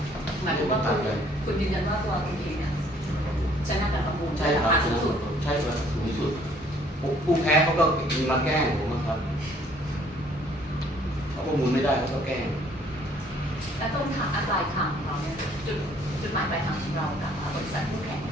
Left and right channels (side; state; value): both; normal; correlation 0.60